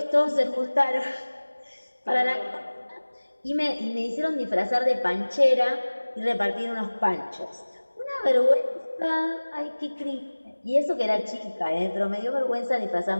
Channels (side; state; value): both; inverted; correlation -1.00